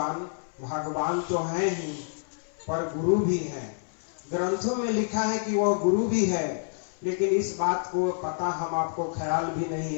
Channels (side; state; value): right; silent; 59 dB below the other